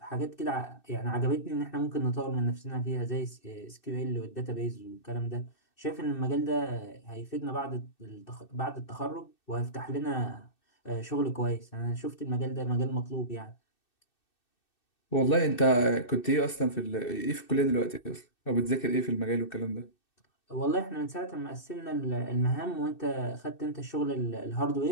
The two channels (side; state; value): right; late; 2.6 ms